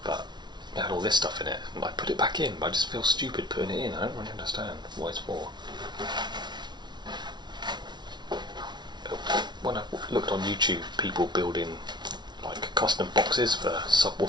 but it had all this stuff in it, and I put it back in, but I just feel stupid putting it in. I don't really understand what it's for. When I looked on YouTube, people building like custom boxes for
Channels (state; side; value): late; left; 0.21 ms